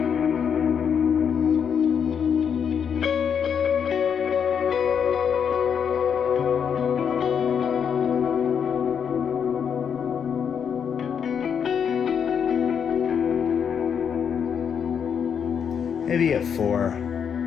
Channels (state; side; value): quieter; right; 7.5 dB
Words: Maybe at 4.